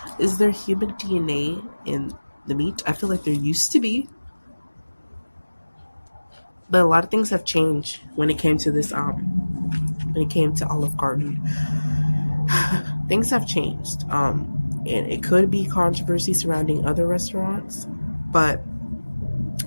Is there human DNA in the meat? I feel like there used to be. But a lot of things have changed when it came to this when it came to Olive Garden. Things have changed. And it could be controversy surrounding other restaurants, but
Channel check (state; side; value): inverted; both; correlation -1.00